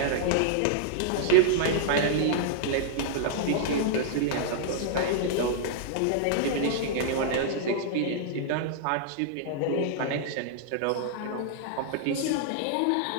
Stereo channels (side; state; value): both; different; correlation -0.01